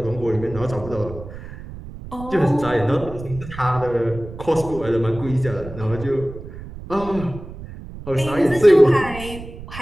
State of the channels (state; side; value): noise; right; rumble, 13 dB below the sound